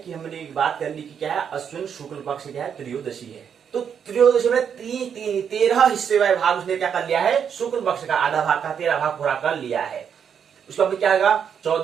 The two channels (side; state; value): left; quieter; 7.7 dB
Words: हमने एक बात कर ली कि क्या है, अश्विन शुक्ल पक्ष क्या है, त्रयोदशी है। तो त्रयोदशी में 13 हिस्से वाले भाग उसने क्या कर लिया है, शुक्ल पक्ष का आधा भाग का 13 भाग पूरा कर लिया है। उसका फिर क्या होगा,